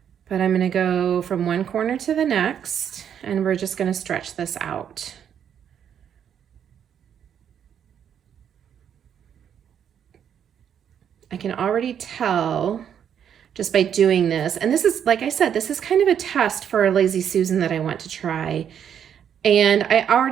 But I'm gonna go from one corner to the next, and we're just gonna stretch this out. I can already tell just by doing this, and this is, like I said, this is kind of a test for a Lazy Susan that I want to try. And I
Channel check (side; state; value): left; quieter; 8.7 dB